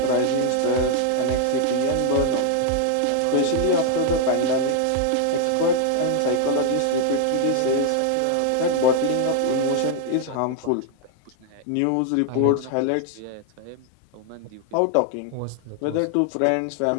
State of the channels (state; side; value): different; both; correlation 0.00